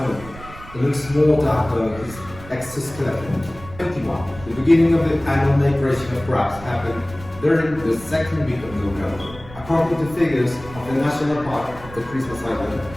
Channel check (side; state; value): right; noise; rumble, 16 dB below the sound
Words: It looks more dark than his exoskeleton. 21. The beginning of the annual migration of crabs happened during the second week of November. According to figures of the National Park of the Christmas Island,